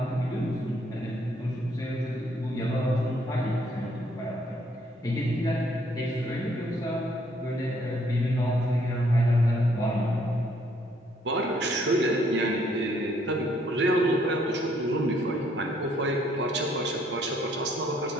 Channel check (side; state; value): both; normal; correlation 0.67